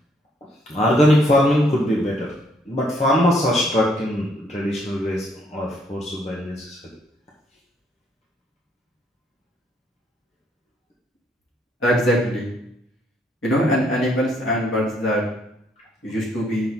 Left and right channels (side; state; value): both; normal; correlation 0.69